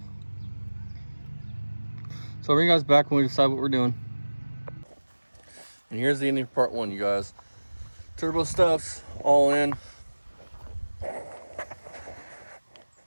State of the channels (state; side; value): inverted; both; correlation -1.00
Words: So I'll bring you guys back when we decide what we're doing. And here's the ending of part one, you guys. Turbo stuff's all in.